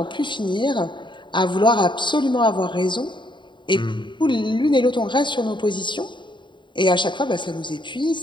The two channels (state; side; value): late; right; 0.23 ms